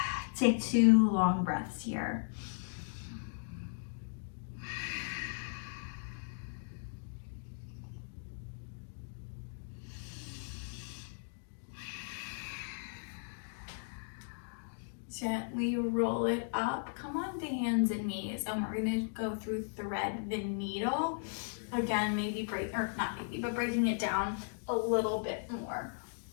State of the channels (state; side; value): silent; right; digital silence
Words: Take 2 long breaths here. Gently roll it up, come on to hands and knees, and we're gonna go through thread the needle. Again, maybe breaking it down a little bit more.